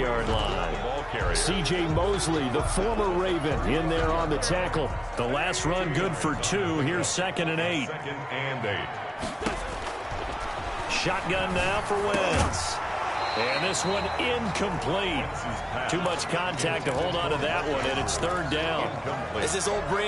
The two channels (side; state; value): both; identical; correlation 1.00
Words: line. C.J. Mosley, the former Raven, in there on the tackle. The last run good for 2. Here's 2nd and 8. Shotgun now for Wentz. And this one incomplete. Too much contact to hold on to that one, and it's 3rd down. As his old